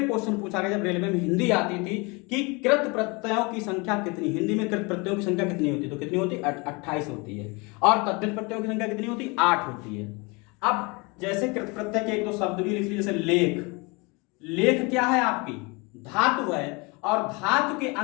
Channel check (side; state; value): right; quieter; 28.1 dB